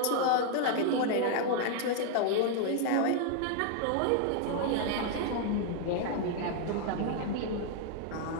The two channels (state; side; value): different; both; correlation 0.00